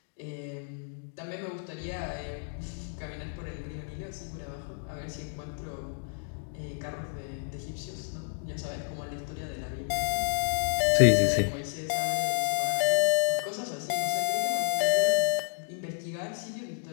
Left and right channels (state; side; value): silent; right; digital silence